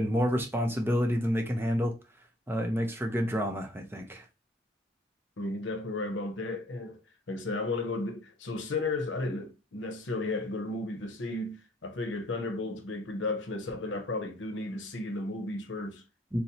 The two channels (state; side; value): normal; both; correlation 0.63